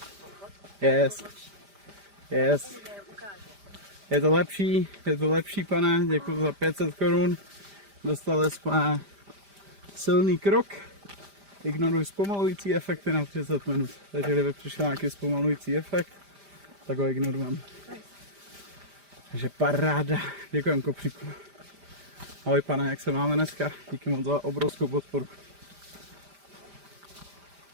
Yes. Yes. Je to lepší, pane, děkuji za 500 korun. Dostali jsme silný krok. Ignoruj zpomalující efekty na 30 minut. Takže kdyby přišel nějaký zpomalující efekt, tak ho ignorujeme. Takže paráda. Děkujem, kopříku. Ahoj, pane, jak se máme dneska? Díky moc za obrovskou podporu.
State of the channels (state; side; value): late; left; 5.0 ms